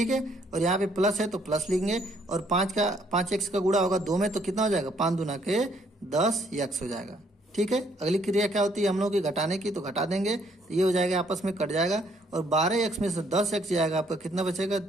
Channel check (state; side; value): normal; both; correlation 0.67